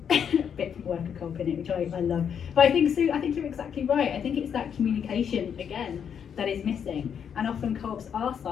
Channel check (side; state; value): right; quieter; 7.8 dB